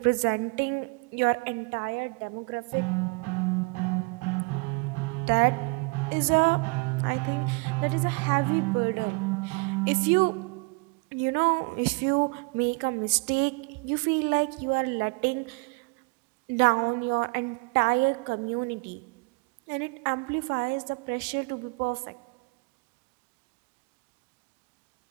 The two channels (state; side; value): quieter; left; 31.3 dB